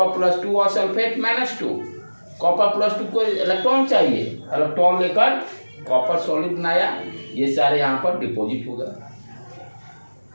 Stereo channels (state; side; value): inverted; both; correlation -1.00